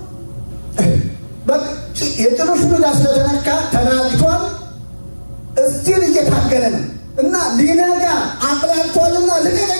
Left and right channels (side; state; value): both; inverted; correlation -1.00